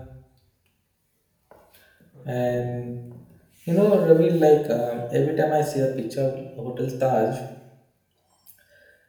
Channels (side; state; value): both; identical; correlation 1.00